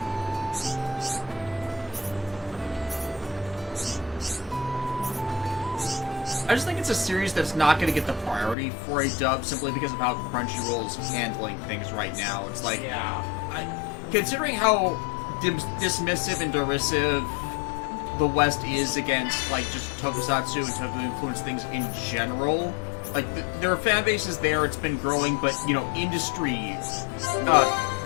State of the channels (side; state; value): right; drops out; at 8.6 s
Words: I just think it's a series that's not going to get the priority for a dub simply because of how Crunchyroll's handling things right now. It's like, yeah, considering how dismissive and derisive the West is against, like, just tokusatsu and toku influenced things in general, like, there are fan bases there, it's been growing, but, you know, industry,